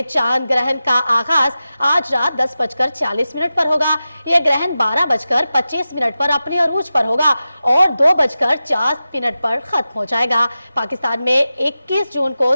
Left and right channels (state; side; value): inverted; both; correlation -0.93